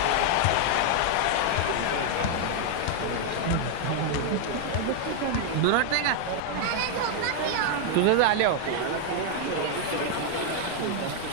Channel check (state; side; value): different; both; correlation 0.00